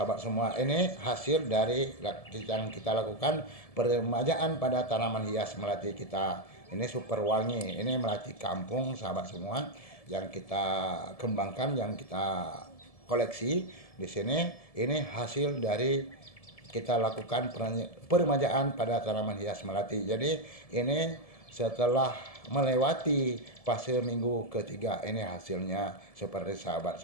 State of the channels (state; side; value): late; right; 1.7 ms